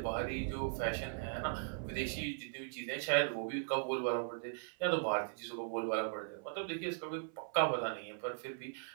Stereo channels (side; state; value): left; silent; 52 dB below the other